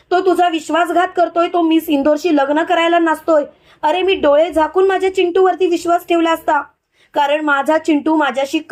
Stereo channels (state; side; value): identical; both; correlation 1.00